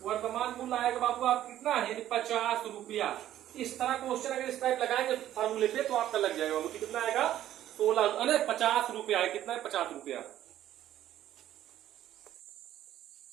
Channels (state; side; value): quieter; left; 12.3 dB